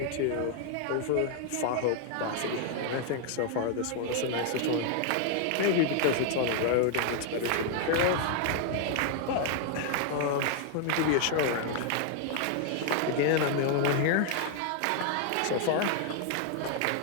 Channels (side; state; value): both; different; correlation 0.00